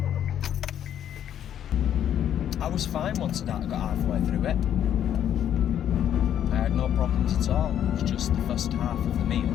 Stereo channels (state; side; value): quieter; right; 10.1 dB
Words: I was fine once I got halfway through it. I had no problems at all. It was just the first half of the meal.